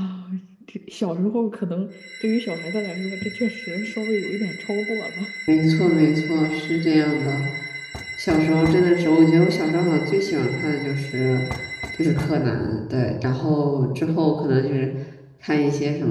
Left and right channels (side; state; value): both; identical; correlation 1.00